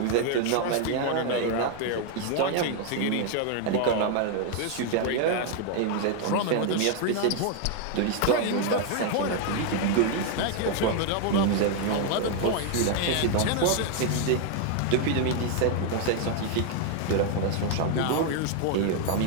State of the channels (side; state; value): both; different; correlation 0.00